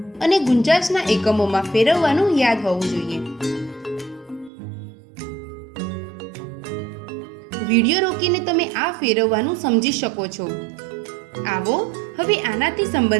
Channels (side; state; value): left; drops out; at 4.5 s